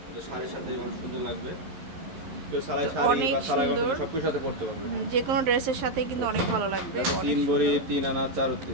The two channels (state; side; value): late; left; 11 ms